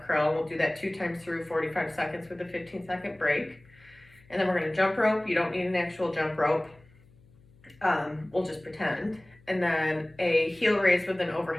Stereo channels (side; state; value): left; noise; hum, 28 dB below the sound